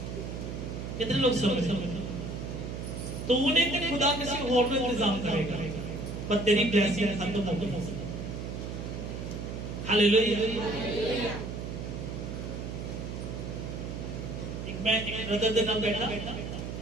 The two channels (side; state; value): right; noise; hum, 6 dB below the sound